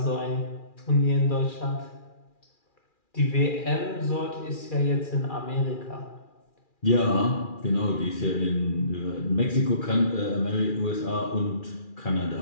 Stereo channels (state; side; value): late; right; 2.4 ms